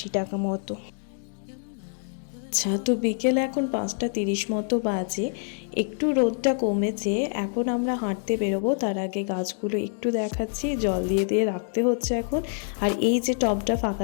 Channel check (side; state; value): right; silent; 59 dB below the other